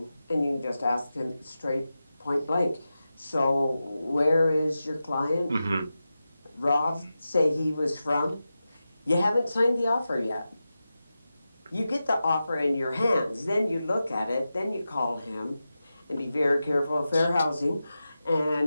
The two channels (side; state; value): both; inverted; correlation -0.92